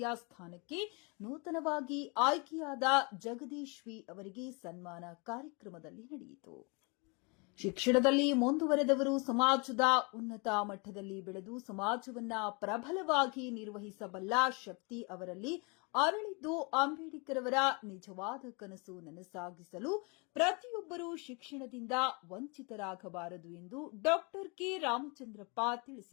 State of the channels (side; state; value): right; quieter; 31.5 dB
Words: ಸ್ಥಾನಕ್ಕೆ ನೂತನವಾಗಿ ಆಯ್ಕೆಯಾದ ಜಗದೀಶ್ ವಿ ಅವರಿಗೆ ಸನ್ಮಾನ ಕಾರ್ಯಕ್ರಮದಲ್ಲಿ ನಡೆಯಿತು. ಶಿಕ್ಷಣದಲ್ಲಿ ಮುಂದುವರೆದವರು ಸಮಾಜದ ಉನ್ನತ ಮಟ್ಟದಲ್ಲಿ ಬೆಳೆದು ಸಮಾಜವನ್ನ ಪ್ರಬಲವಾಗಿ ನಿರ್ವಹಿಸಬಲ್ಲ ಶಕ್ತಿ ಅವರಲ್ಲಿ ಅರಳಿದ್ದು ಅಂಬೇಡ್ಕರ್ ಅವರ ನಿಜವಾದ ಕನಸು ನನಸಾಗಿಸಲು ಪ್ರತಿಯೊಬ್ಬರೂ ಶಿಕ್ಷಣದಿಂದ ವಂಚಿತರಾಗಬಾರದು ಎಂದು ಡಾ ಕೆ ರಾಮಚಂದ್ರಪ್ಪ